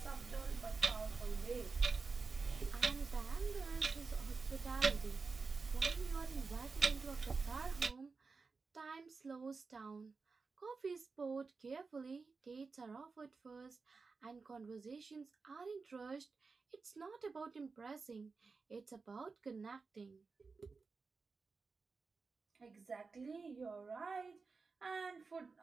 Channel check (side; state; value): left; quieter; 4.5 dB